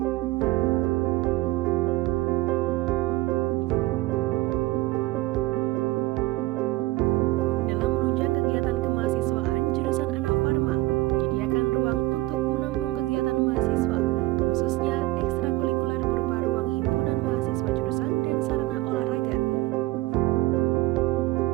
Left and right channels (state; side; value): quieter; left; 19.4 dB